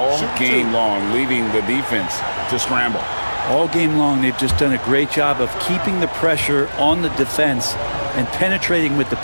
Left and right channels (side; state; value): both; inverted; correlation -1.00